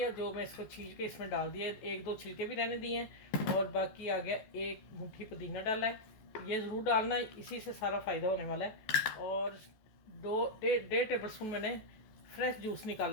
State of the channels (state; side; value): late; right; 14 ms